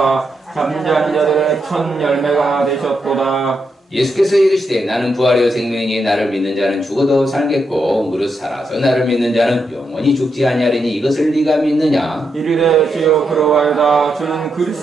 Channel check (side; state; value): both; normal; correlation 0.83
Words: 잠자는 자들의 첫 열매가 되셨도다. 예수께서 이르시되 나는 부활이요 생명이니 나를 믿는 자는 죽어도 살겠고 무릇 살아서 나를 믿는 자는 영원히 죽지 아니하리니 이것을 네가 믿느냐. 이르되 주여 그러하여다. 주는